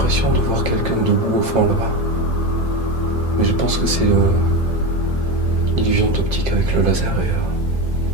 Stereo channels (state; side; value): late; left; 2.0 ms